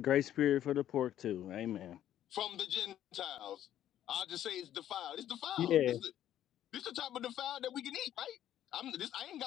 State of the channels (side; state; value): right; quieter; 11.6 dB